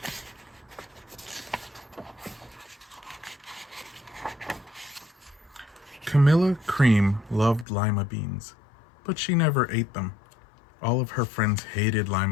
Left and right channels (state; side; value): drops out; right; at 7.7 s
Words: Camilla Cream loved lima beans, but she never ate them. All of her friends hated